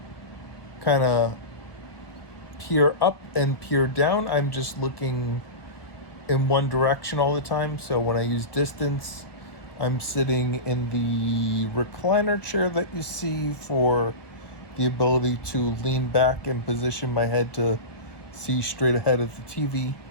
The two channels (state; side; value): late; right; 1.3 ms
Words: kind of peer up and peer down. I'm just looking in one direction all the time. So when I use distance, I'm sitting in the recliner chair that you see for the ability to lean back and position my head to see straight ahead of the TV,